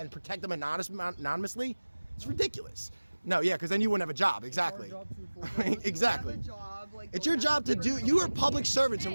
protect them anonymously? It's ridiculous. No, yeah, because then you wouldn't have a job. Exactly. Our job to enforce it. Exactly. You have a job, like, It's going your job after to do. people. You are public servants and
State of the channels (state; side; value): inverted; both; correlation -1.00